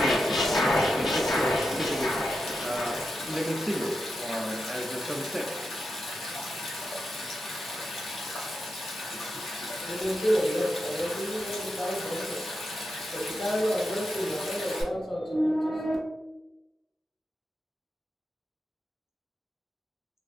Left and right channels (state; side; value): normal; both; correlation 0.87